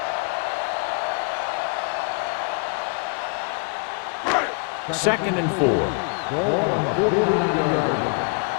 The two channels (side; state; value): right; quieter; 36.1 dB